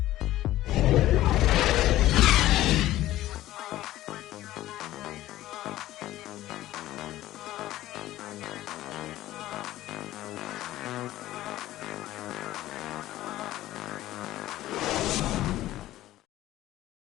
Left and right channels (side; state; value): right; quieter; 14.9 dB